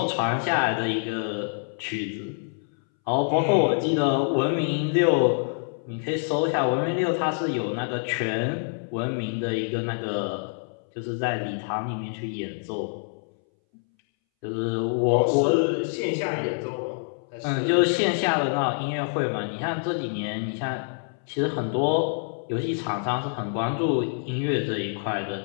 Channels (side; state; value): right; silent; 60 dB below the other